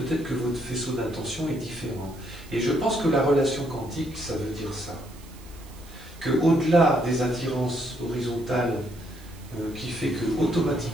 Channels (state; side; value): noise; right; hiss, 23 dB below the sound